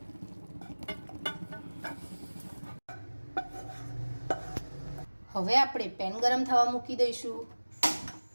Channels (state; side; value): inverted; both; correlation -1.00